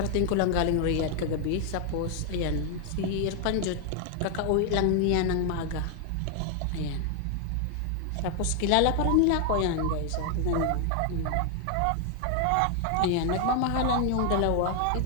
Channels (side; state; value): both; different; correlation 0.00